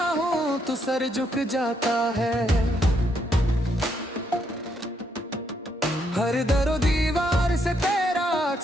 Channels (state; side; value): normal; both; correlation 0.75